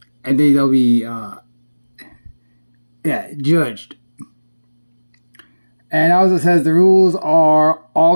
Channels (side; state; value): both; inverted; correlation -1.00